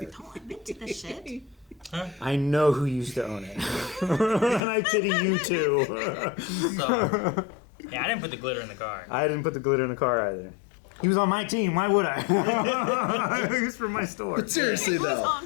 Oh, I'm into this shit. I know who used to own it, and I pity you too. So, yeah, I didn't put the glitter in the car. I didn't put the glitter in the car either. He was on my team. Why would I? He was from my store. But seriously It was though, on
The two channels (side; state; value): right; drops out; at 4.6 s